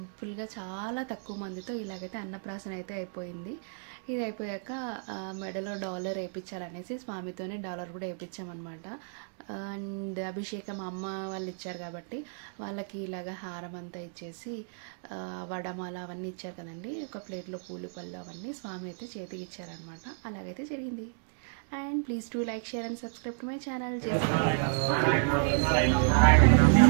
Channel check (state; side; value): silent; left; digital silence